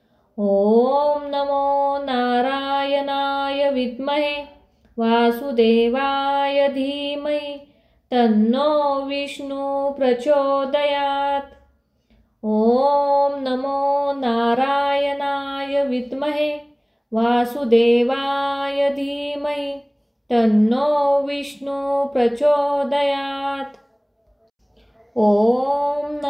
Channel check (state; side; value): identical; both; correlation 1.00